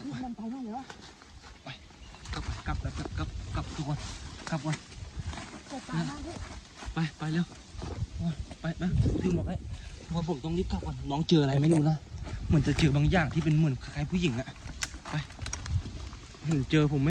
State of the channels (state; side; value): identical; both; correlation 1.00